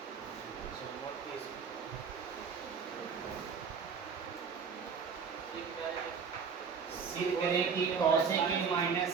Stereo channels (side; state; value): left; quieter; 6.0 dB